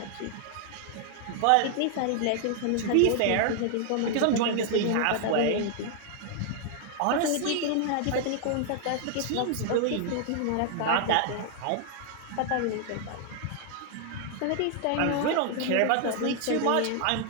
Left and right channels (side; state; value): both; different; correlation 0.00